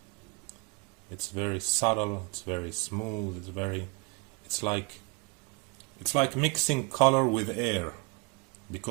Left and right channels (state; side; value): quieter; left; 29.5 dB